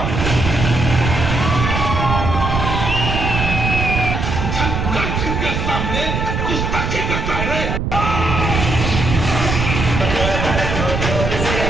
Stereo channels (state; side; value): noise; right; rumble, 2 dB below the sound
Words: के सामने गुस्ताखी करता है रे।